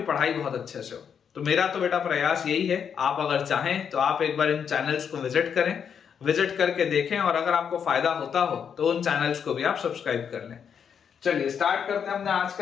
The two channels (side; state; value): right; quieter; 7.4 dB